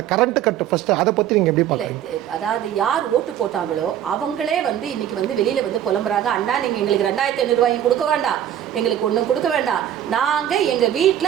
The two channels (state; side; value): quieter; left; 10.8 dB